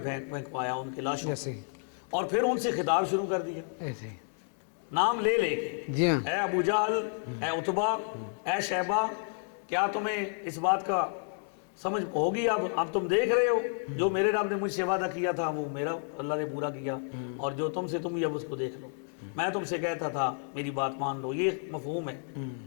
ان کے لاشوں ایسے کو، اور پھر ان سے خطاب شروع کر دیا ایسے نام لے لے کے، جی ہاں اے ابو جہل، اے عتبہ، اے شیبہ، کیا تمہیں اس بات کا سمجھ ہوگی؟ اب تم دیکھ رہے ہو جو میرے رب نے مجھ سے وعدہ کیا تھا وہ میرا اللہ نے پورا کیا، اور جو تم سے تم بھی اب اس کو دیکھ لو، میں تم سے کہتا تھا میری بات مان لو۔ یہ مفہوم ہے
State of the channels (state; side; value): silent; right; 57 dB below the other